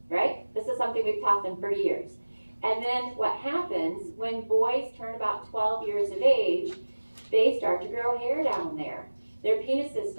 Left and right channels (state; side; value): inverted; both; correlation -1.00